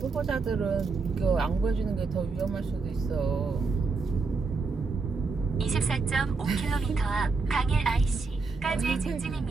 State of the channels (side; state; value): left; quieter; 4.3 dB